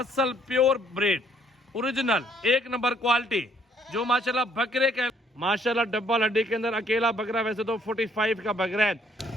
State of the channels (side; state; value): both; normal; correlation 0.65